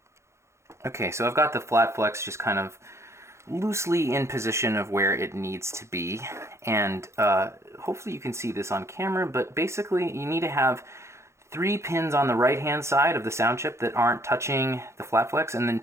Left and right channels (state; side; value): late; left; 0.13 ms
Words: Okay, so I've got the flat flex just kind of loosely in position of where it needs to be, and hopefully you can see this on camera, but basically you need to have 3 pins on the right hand side of the sound chip that aren't touching the flat flex, and then